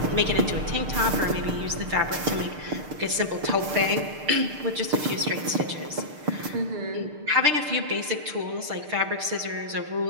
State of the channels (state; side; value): late; left; 6.6 ms